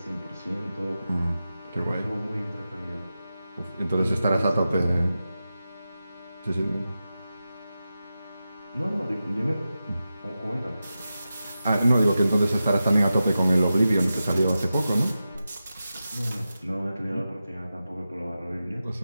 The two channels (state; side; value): inverted; both; correlation -0.92